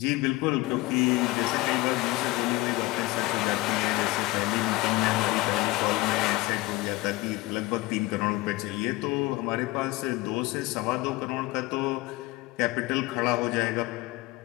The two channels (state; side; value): quieter; right; 20.4 dB